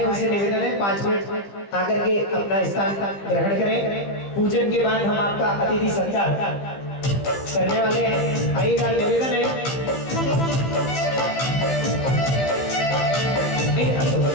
उनसे निवेदन है 5 मिनट आकर के अपना स्थान ग्रहण करें। पूजन के बाद हम आपका अतिथि सत्कार करने वाले हैं। आइएगा, निवेदन है।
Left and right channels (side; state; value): right; late; 15 ms